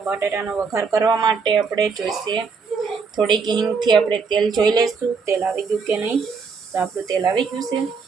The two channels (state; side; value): quieter; left; 5.2 dB